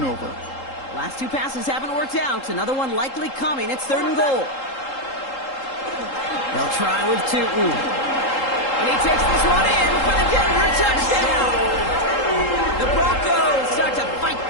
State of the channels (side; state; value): right; late; 3.8 ms